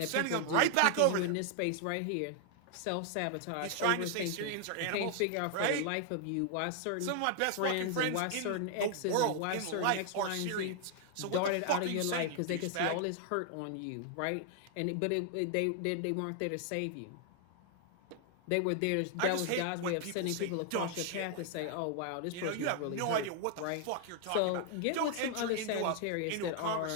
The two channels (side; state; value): both; different; correlation 0.00